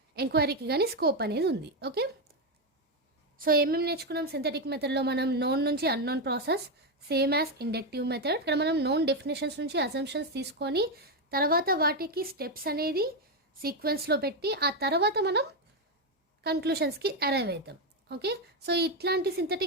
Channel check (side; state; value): both; normal; correlation 0.06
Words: ఎంక్వైరీకి కానీ స్కోప్ అనేది ఉంది. ఓకే, సో ఏమేమి నేర్చుకున్నాం సింథటిక్ మెథడ్లో మనం? నోన్ నుంచి unknown process same as inductive method. ఇక్కడ మనం నోన్ డెఫినేషన్స్ నుంచి అజంప్షన్స్ తీసుకొని తర్వాత వాటికి స్టెప్స్ అనేది సీక్వెన్స్లో పెట్టి ఆ తర్వాత మనం కన్క్లూషన్స్కి అరైవ్ అవుతాం. ఓకే, సో ఇట్లాంటి